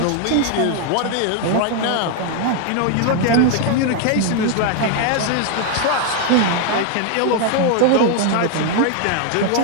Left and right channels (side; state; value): both; different; correlation 0.00